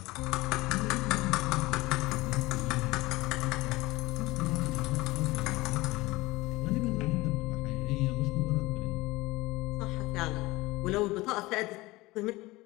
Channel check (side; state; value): right; quieter; 20.5 dB